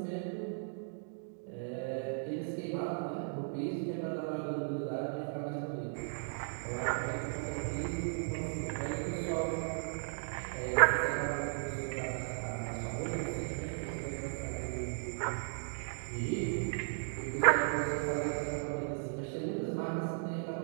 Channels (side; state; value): left; silent; digital silence